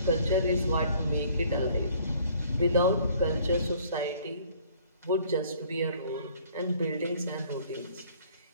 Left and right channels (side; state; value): both; inverted; correlation -0.57